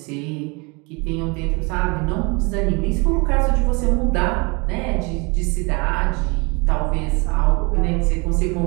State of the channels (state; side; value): quieter; left; 29.4 dB